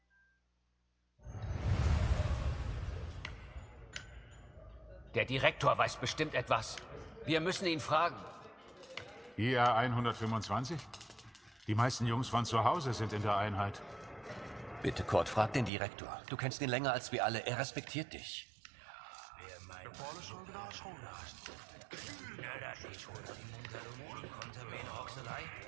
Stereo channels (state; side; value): drops out; left; at 15.7 s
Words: Der Direktor weiß bestimmt etwas. Wir müssen ihn fragen. IA 125? Die meisten Jungs von zu Hause sind in der Einheit. Bitte, Kurt, frag den Direktor. Du kennst ihn länger als wir alle. Er respektiert dich.